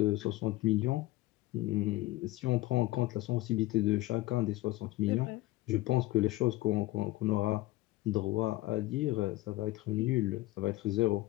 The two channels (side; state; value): right; quieter; 18.2 dB